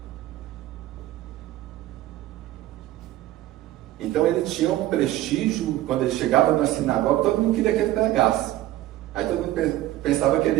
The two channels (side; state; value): left; quieter; 15.1 dB